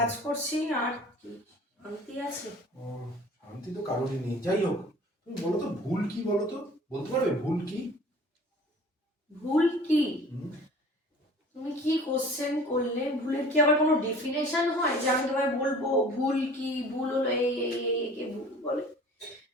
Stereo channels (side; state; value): both; normal; correlation 0.46